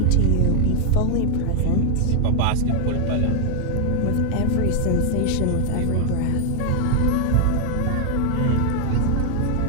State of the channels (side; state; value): both; different; correlation 0.00